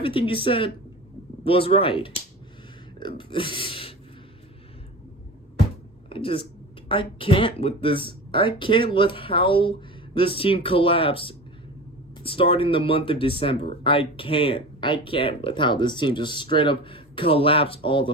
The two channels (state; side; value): normal; both; correlation 0.32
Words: he said was right. I can't with this. I can't with how this team collapsed starting the month of December. I can't with how this team just straight up collapsed all the